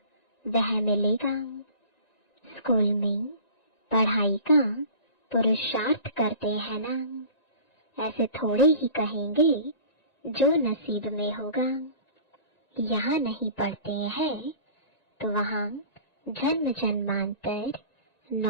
वह मिलेगा। स्कूल में पढ़ाई का पुरुषार्थ करते हैं ना, ऐसे थोड़े ही कहेंगे जो नसीब में होगा। यहाँ नहीं पढ़ते हैं तो वहाँ जन्म जन्मांतर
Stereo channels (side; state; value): right; late; 1.9 ms